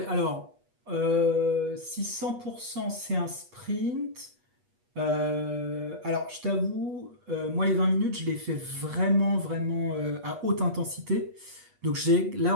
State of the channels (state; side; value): late; left; 8.3 ms